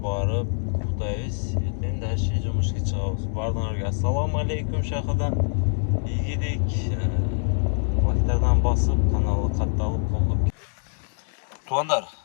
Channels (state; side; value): silent; right; digital silence